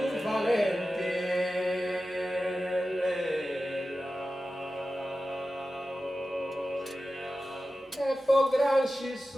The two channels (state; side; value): normal; both; correlation 0.94